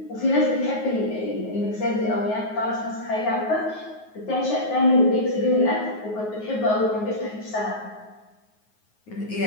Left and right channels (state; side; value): late; right; 9.4 ms